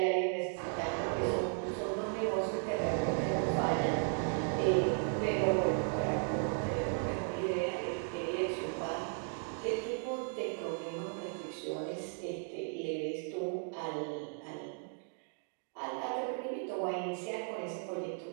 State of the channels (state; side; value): silent; left; 54 dB below the other